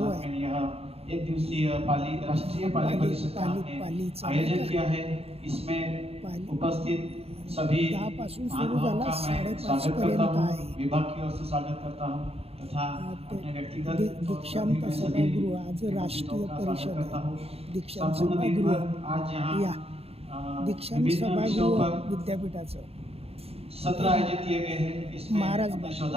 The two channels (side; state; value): left; late; 0.29 ms